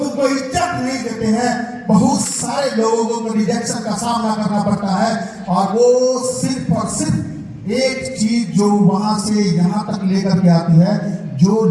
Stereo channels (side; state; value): both; identical; correlation 1.00